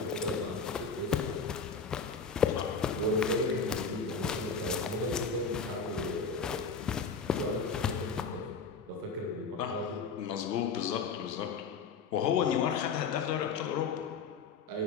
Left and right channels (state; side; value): quieter; right; 5.1 dB